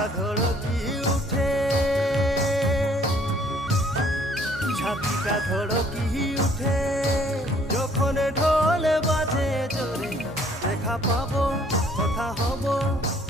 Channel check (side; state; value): both; normal; correlation 0.61